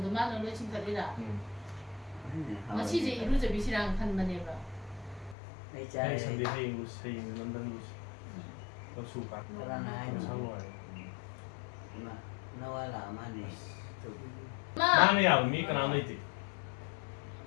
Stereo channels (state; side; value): drops out; right; at 5.4 s